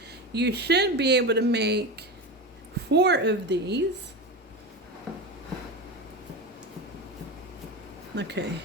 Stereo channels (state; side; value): normal; both; correlation 0.23